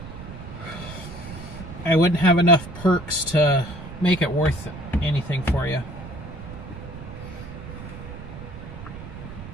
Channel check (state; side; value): noise; right; rumble, 12 dB below the sound